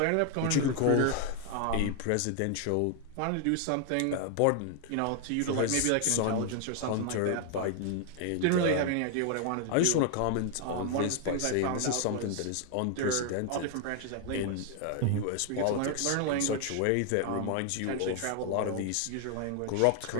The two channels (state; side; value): different; both; correlation 0.00